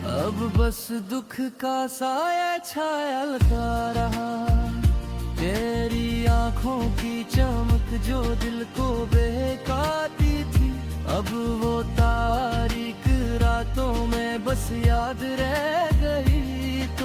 अब बस दुख का साया छाया रहा। तेरी आंखों की चमक जो दिल को बहकाती थी, अब वो तारीख रातों में बस याद रह गई।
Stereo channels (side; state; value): both; identical; correlation 1.00